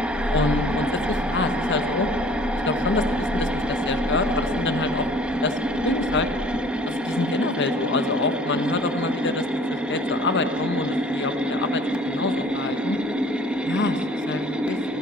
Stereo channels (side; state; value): both; normal; correlation 0.51